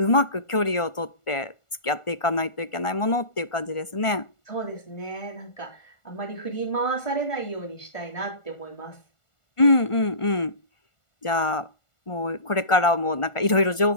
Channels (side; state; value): right; late; 1.4 ms